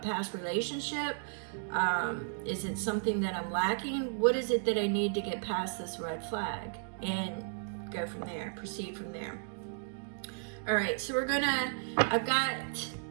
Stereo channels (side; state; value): left; silent; digital silence